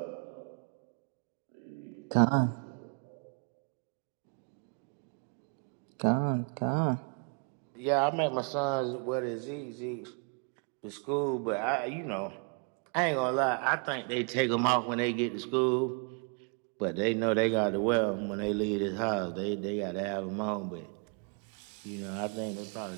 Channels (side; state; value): left; quieter; 38.9 dB